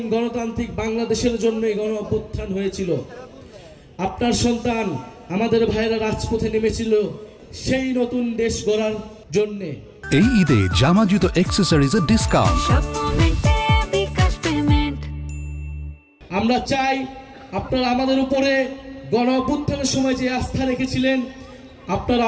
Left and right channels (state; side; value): identical; both; correlation 1.00